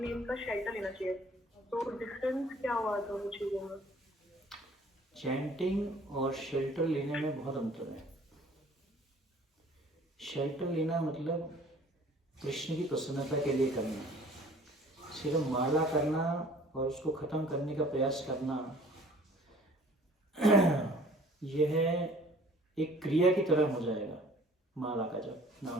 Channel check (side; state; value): both; normal; correlation 0.52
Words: का शेल्टर लेना चाहिए। तो डिफरेंस क्या हुआ दोनों चीजों में? चैंटिंग और शेल्टर लेने में बहुत अंतर है। शेल्टर लेना मतलब कृष्ण की प्रसन्नता के लिए करना, सिर्फ माला करना और उसको खत्म करने का प्रयास करना, यह एक क्रिया की तरह हो जाएगा माला का जप,